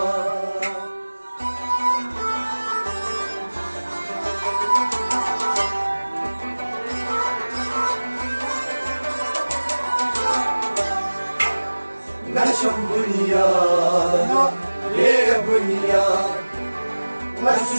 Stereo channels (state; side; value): inverted; both; correlation -1.00